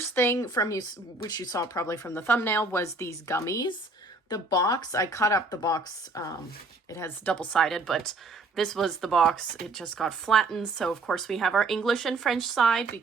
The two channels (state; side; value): quieter; left; 3.3 dB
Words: thing from you, which you saw probably from the thumbnail, was these gummies. The box, I cut up the box, it has double-sided, but this was the box. It just got flattened, so of course we have our English and French side